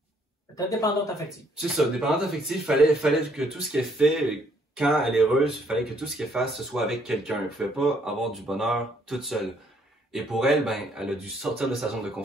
T'es dépendante affective. c'est ça, dépendante affective, fallait que tout ce qu'elle fait, quand elle est heureuse, fallait que tout ce qu'elle fasse, ce soit avec quelqu'un. Elle pouvait pas avoir du bonheur toute seule. Et pour elle, ben, elle a dû sortir de sa zone de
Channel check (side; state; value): both; normal; correlation 0.67